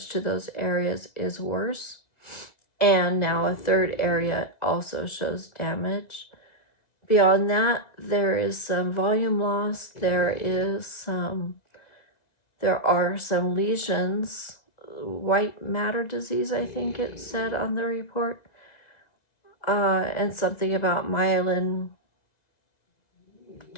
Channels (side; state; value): right; late; 1.9 ms